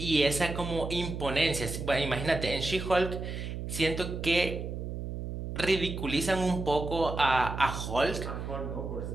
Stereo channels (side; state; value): right; noise; hum, 6 dB below the sound